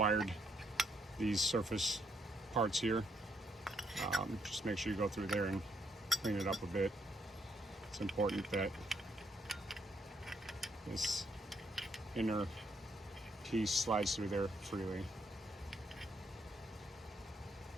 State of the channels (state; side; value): normal; both; correlation 0.74